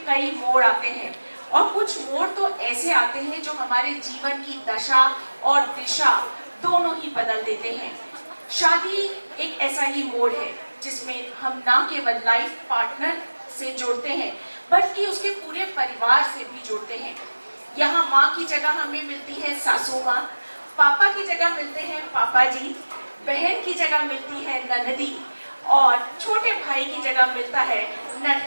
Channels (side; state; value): both; inverted; correlation -1.00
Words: कई मोड़ आते हैं और कुछ मोड़ तो ऐसे आते हैं जो हमारे जीवन की दशा और दिशा दोनों ही बदल देते हैं। शादी एक ऐसा ही मोड़ है जिसमें हम ना केवल लाइफ पार्टनर से जुड़ते हैं बल्कि उसके पूरे परिवार से भी जुड़ते हैं। यहाँ माँ की जगह हमें मिलती है सासू माँ, पापा की जगह मिलते हैं पापा जी, बहन की जगह मिलती है ननदी और छोटे भाई की जगह मिलता है